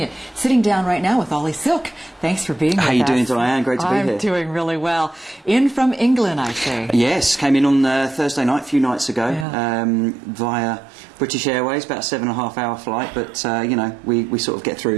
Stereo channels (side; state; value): left; drops out; at 9.5 s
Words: Sitting down right now with Oli Silk. Thanks for being with us. How you doing, Diane? Great to be here. I'm doing really well. In from England, I see. Yes, came in on Thursday night, a few nights ago, via British Airways, about a 7.5-hour flight. But you know, we sort of get